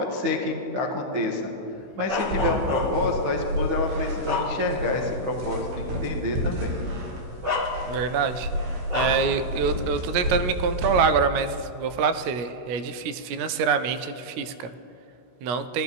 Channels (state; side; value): late; left; 16 ms